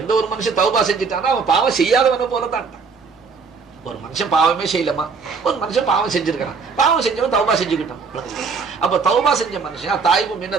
ஒரு மனுஷன் தௌபா செஞ்சுட்டானா அவன் பாவம் செய்யாதவன போலதான். ஒரு மனுஷன் பாவமே செய்யலமா, ஒரு மனுஷன் பாவம் செஞ்சிருக்கான், பாவம் செஞ்சவன் தௌபா செஞ்சுக்கிட்டான். அப்ப தௌபா செஞ்ச மனுஷன் அத்தாயிபு மின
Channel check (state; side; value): quieter; left; 5.0 dB